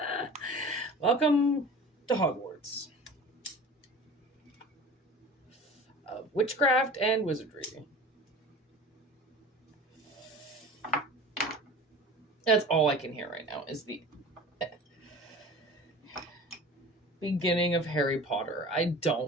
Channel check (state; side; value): normal; both; correlation 0.39